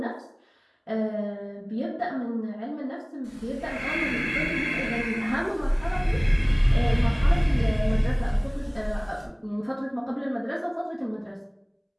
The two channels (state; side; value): identical; both; correlation 1.00